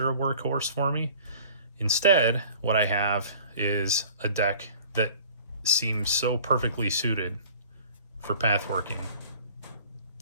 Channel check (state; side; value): inverted; both; correlation -0.48